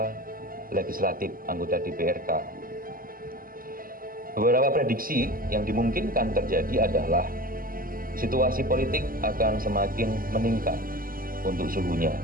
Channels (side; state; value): left; late; 0.42 ms